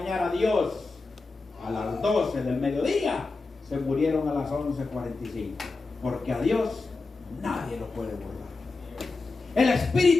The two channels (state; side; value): quieter; right; 3.7 dB